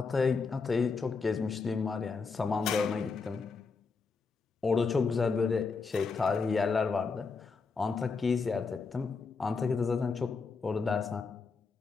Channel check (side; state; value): right; quieter; 4.7 dB